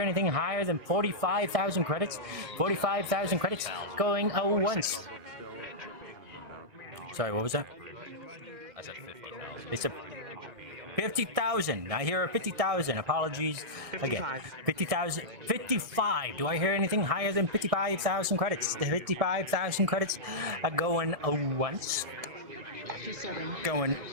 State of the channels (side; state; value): left; late; 1.6 ms